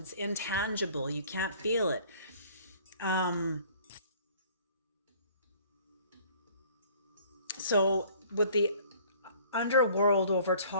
intangible. You can't feel it. So with the underworld over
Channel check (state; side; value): inverted; both; correlation -0.54